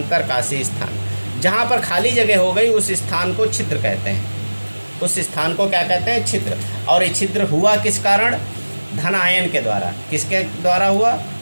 स्थान जहाँ पर खाली जगह हो गई उस स्थान को छिद्र कहते हैं, उस स्थान को क्या कहते हैं, छिद्र। और ये छिद्र हुआ किस कारण, धनायन के द्वारा। किसके द्वारा हुआ,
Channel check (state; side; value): inverted; both; correlation -1.00